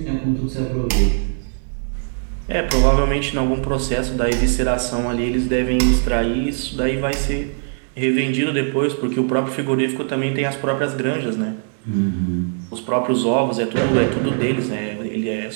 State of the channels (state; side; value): silent; left; 65 dB below the other